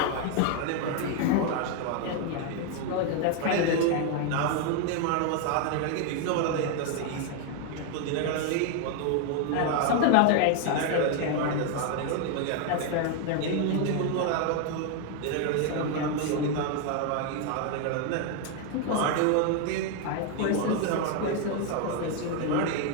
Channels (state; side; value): different; both; correlation 0.01